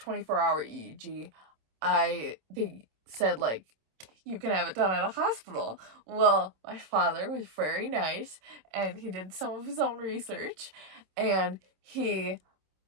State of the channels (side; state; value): left; late; 26 ms